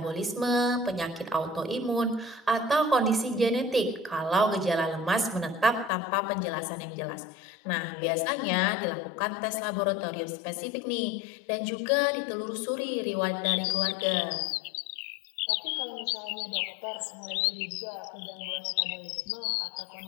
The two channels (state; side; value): drops out; right; at 5.9 s